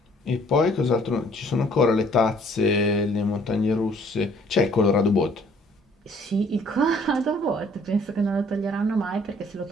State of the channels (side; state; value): both; normal; correlation 0.60